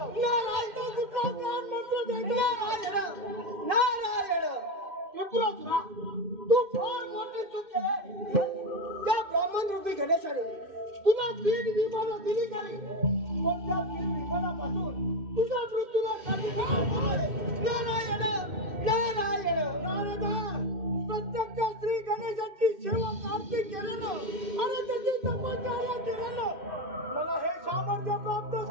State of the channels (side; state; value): left; late; 2.6 ms